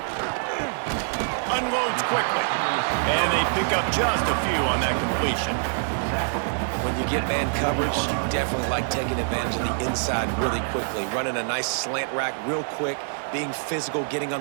Unloads quickly. And they pick up just a few on that completion. When you get man coverage, you definitely like taking advantage of the inside really quickly. Running a nice slant rack real quick, being physical, getting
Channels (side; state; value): left; silent; 58 dB below the other